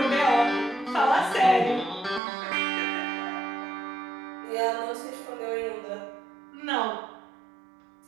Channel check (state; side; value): drops out; left; at 2.2 s